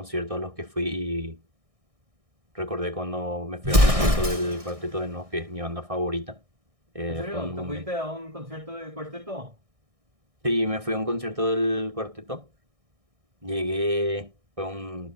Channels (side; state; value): left; late; 1.6 ms